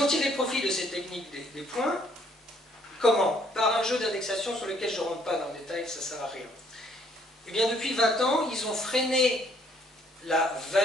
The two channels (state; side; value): normal; both; correlation 0.65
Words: ont tiré profit de cette technique des points. Comment? Par un jeu d'indexation sur lequel je ne rentre pas dans le détail, ça ne sert à rien. Eh bien, depuis 20 ans, ils ont freiné la